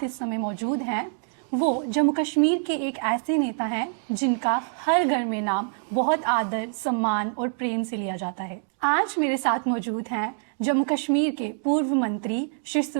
इस समय मौजूद हैं वो जम्मू कश्मीर के एक ऐसे नेता हैं जिनका हर घर में नाम बहुत आदर, सम्मान और प्रेम से लिया जाता है। आज मेरे साथ मौजूद हैं जम्मू कश्मीर के पूर्व मंत्री श्री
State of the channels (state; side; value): silent; left; digital silence